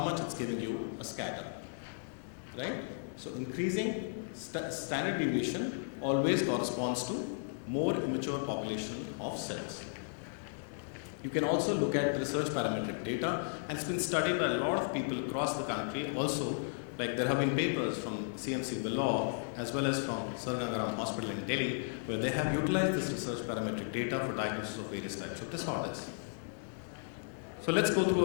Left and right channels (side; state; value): right; silent; digital silence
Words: it's giving you a scatter, right? So increasing standard deviation always corresponds to more immature population of cells. You can also look at the research parametric data, and it's been studied by a lot of people across the country. Also, like there have been papers from CMC Vellore as well as from Sir Gangaram Hospital in Delhi, where they have utilized this research parametric data for diagnosis of various types of disorders. So let's go